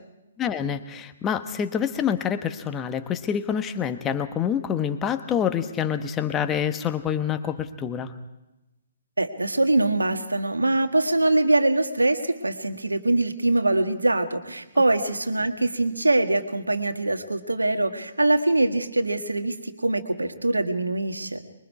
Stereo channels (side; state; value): both; inverted; correlation -0.67